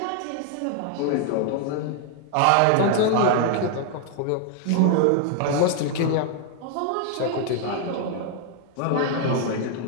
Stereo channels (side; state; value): both; different; correlation 0.00